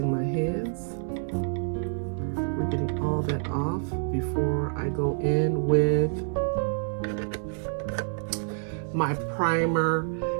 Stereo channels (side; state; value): left; silent; digital silence